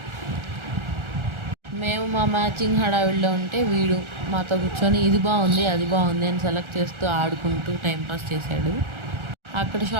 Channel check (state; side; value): late; left; 1.4 ms